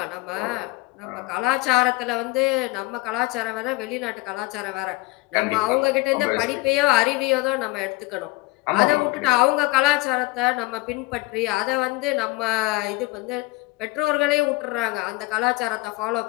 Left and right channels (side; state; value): right; quieter; 22.2 dB